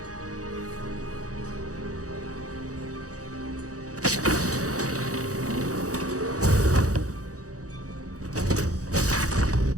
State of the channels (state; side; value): late; left; 0.66 ms